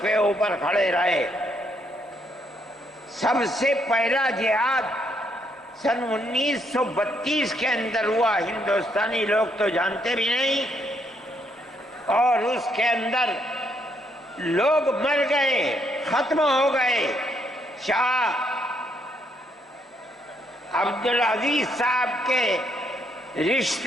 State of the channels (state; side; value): normal; both; correlation 0.73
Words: کے اوپر کھڑے رہے۔ سب سے پہلا جہاد سن 1932 کے اندر ہوا، ہندوستانی لوگ تو جانتے بھی نہیں، اور اس کے اندر لوگ مر گئے، ختم ہو گئے۔ شاہ عبدالعزیز صاحب کے